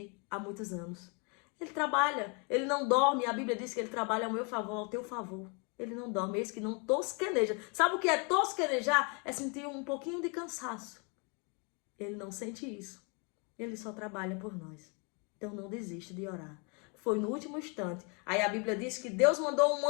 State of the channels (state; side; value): quieter; right; 34.1 dB